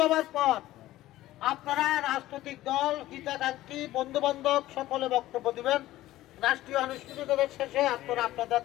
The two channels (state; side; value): quieter; right; 15.6 dB